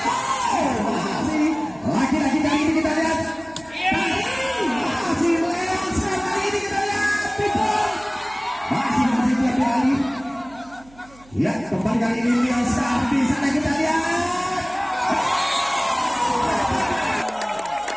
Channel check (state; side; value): noise; right; hum, 26 dB below the sound